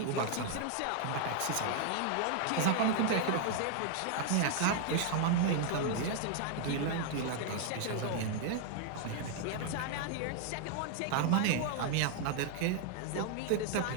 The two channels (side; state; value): both; different; correlation 0.00